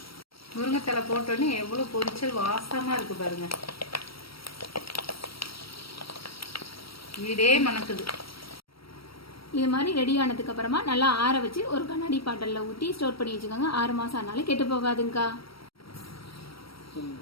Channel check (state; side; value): late; right; 0.75 ms